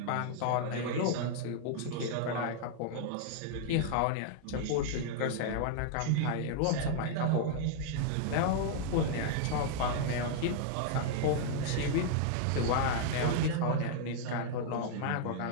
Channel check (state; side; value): different; both; correlation -0.01